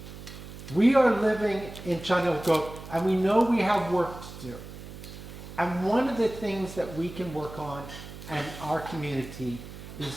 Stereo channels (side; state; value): right; noise; hum, 13 dB below the sound